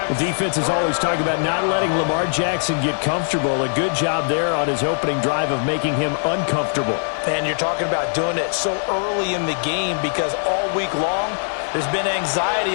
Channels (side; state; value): right; silent; digital silence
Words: The defense is always talking about not letting Lamar Jackson get comfortable. A good job there on his opening drive of making him uncomfortable. And you're talking about doing it so early in the game because all week long there's been